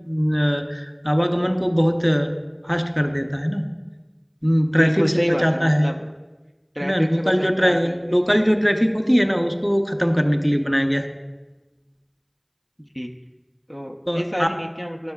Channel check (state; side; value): identical; both; correlation 1.00